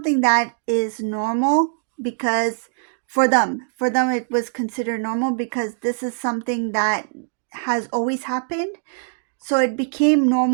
that is normal, because for them it was considered normal, because this is something that has always happened. So it became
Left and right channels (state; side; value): silent; left; digital silence